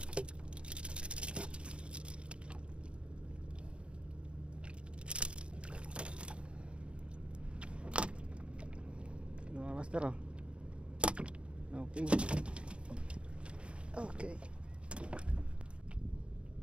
Mga master, oh. Kanuping. Okay.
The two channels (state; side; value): late; left; 0.058 ms